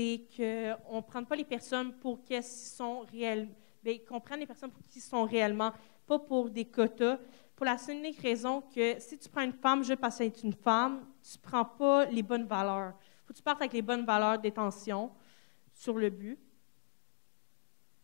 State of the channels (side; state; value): right; silent; digital silence